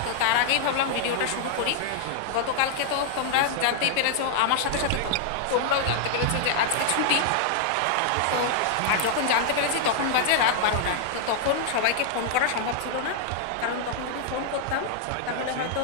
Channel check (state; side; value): different; both; correlation 0.00